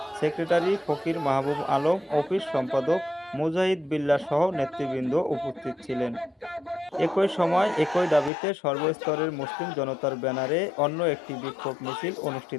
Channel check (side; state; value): right; drops out; at 8.3 s